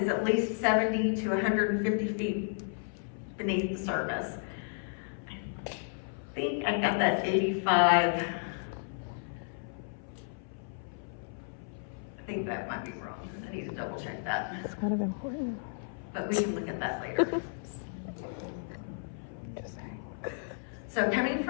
at least 70 to 150 feet beneath the surface. I think I got that 85. I think that might be wrong. I need to double check that. It's kind of important. But we can look at that later. So coming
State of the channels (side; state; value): right; silent; 56 dB below the other